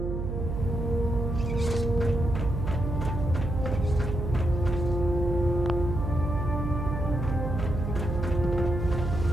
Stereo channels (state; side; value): noise; right; hum, 3 dB below the sound